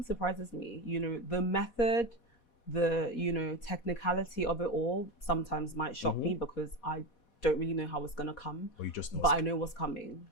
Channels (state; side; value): late; right; 4.1 ms